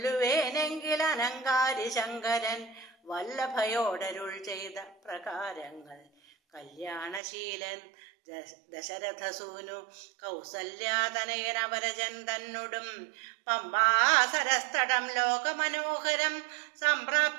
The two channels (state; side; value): drops out; left; at 7.2 s